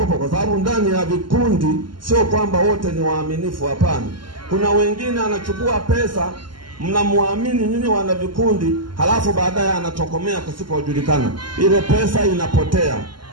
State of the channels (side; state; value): left; late; 0.72 ms